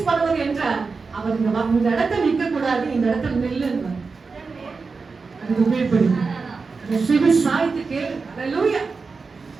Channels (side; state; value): left; quieter; 4.5 dB